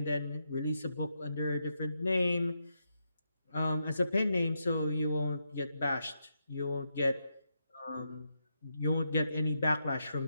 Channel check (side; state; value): both; inverted; correlation -0.83